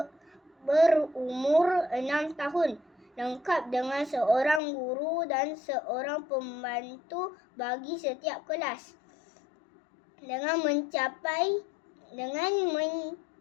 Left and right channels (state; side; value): drops out; right; at 4.6 s